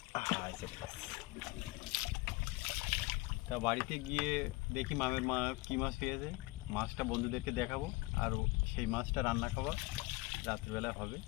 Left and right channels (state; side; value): quieter; right; 21.8 dB